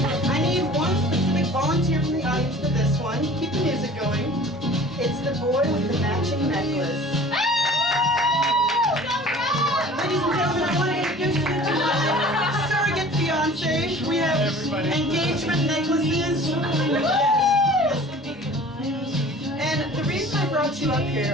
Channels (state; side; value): normal; both; correlation 0.45